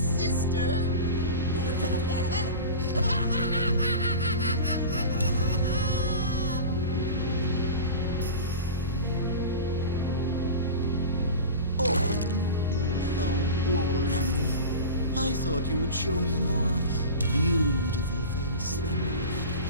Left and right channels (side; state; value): both; inverted; correlation -0.31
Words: Oh, how boring. I thought you would show me a more beautiful face than